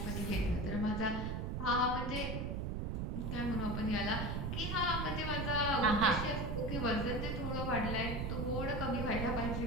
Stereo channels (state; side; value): noise; right; rumble, 2 dB below the sound